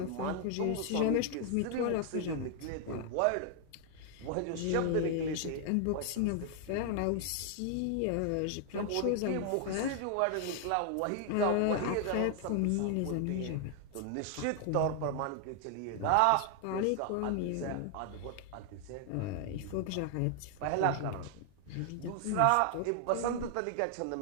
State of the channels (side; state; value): both; different; correlation 0.00